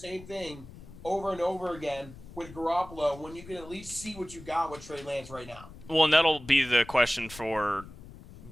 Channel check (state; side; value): noise; left; rumble, 17 dB below the sound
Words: thing over and over again with Garoppolo when you can at least see what you got with Trey Lance right now? Well, and that'll be the question for